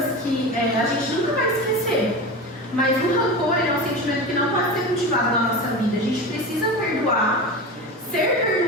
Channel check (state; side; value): normal; both; correlation 0.26